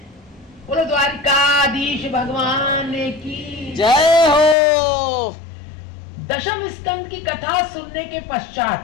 बोलो द्वारिकाधीश भगवान की जय हो। दशम स्कंद की कथा सुनने के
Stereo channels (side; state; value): right; drops out; at 4.5 s